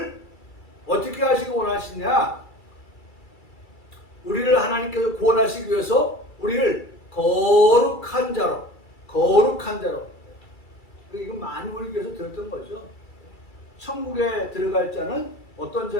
어떻게 하시기 원하시냐? 우리를 하나님께서 구원하시기 위해서 우리를 거룩한 자로, 거룩한 자로. 이건 많이 우리 교회에서 들었던 거죠. 천국에 들어갈 자는 어떤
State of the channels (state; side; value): late; right; 2.3 ms